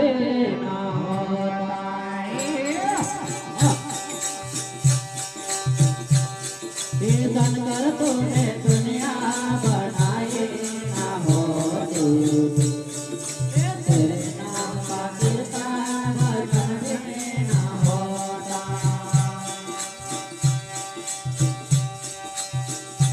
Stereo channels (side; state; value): both; identical; correlation 1.00